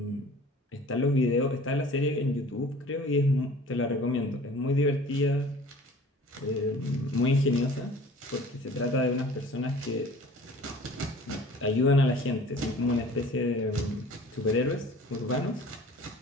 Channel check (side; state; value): both; normal; correlation 0.46